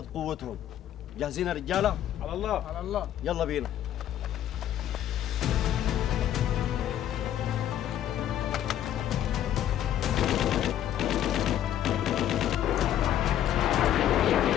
قوتهم. جاهزين يا رجاله؟ على الله. على الله. يلا بينا.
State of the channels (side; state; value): right; quieter; 11.3 dB